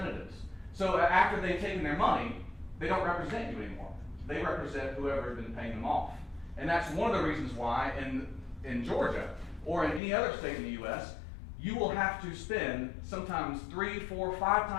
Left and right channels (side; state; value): right; drops out; at 10.0 s